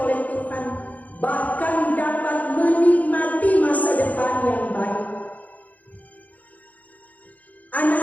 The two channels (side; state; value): right; late; 0.076 ms